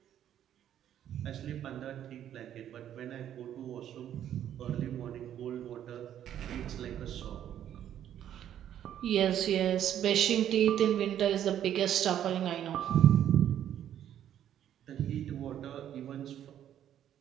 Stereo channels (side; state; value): left; quieter; 10.6 dB